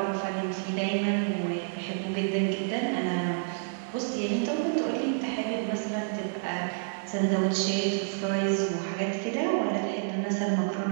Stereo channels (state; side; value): silent; left; 58 dB below the other